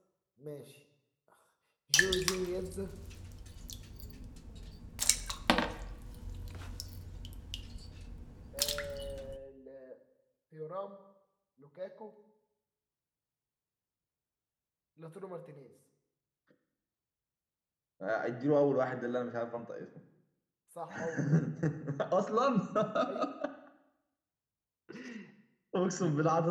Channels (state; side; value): identical; both; correlation 1.00